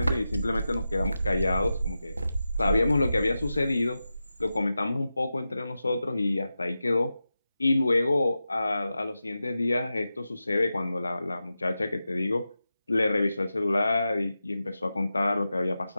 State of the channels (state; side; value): inverted; both; correlation -0.92